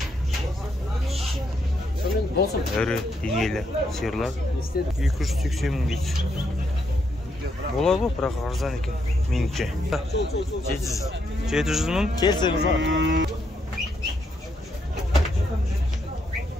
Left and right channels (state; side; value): normal; both; correlation 0.77